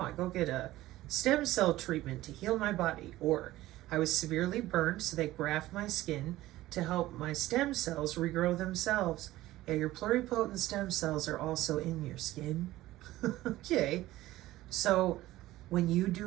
go get a stem cell treatment to heal my body, or I was severely burned, so they graft my skin to help my stem cells regrow themselves. Yeah, your pluripotent stem cells are also in your skin. Okay, so when you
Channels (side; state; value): left; quieter; 16.3 dB